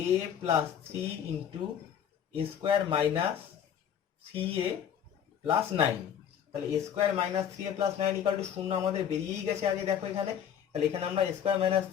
plus 3 into a square minus 3a plus 9। তাহলে a square minus 3a plus 9 equal to 0 আমাদের বেরিয়েই গেছে আগে, দেখো এখানে। তাহলে এখানে আমরা a square minus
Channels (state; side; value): quieter; right; 8.8 dB